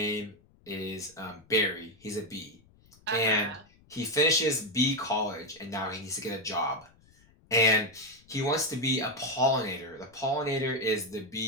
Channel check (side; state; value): left; noise; rumble, 29 dB below the sound